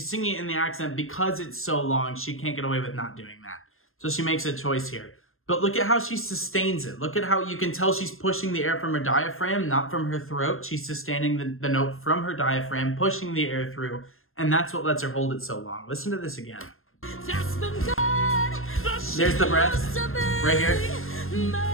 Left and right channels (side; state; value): right; late; 0.61 ms